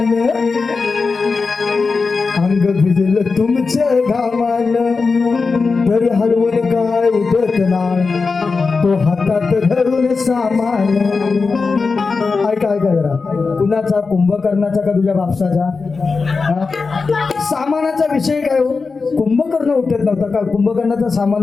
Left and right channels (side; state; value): right; quieter; 4.5 dB